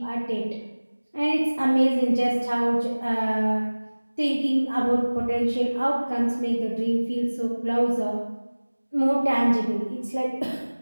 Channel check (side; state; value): both; inverted; correlation -1.00